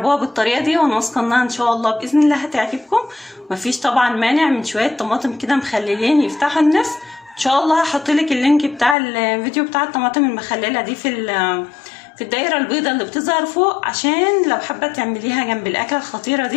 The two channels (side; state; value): right; drops out; at 9.0 s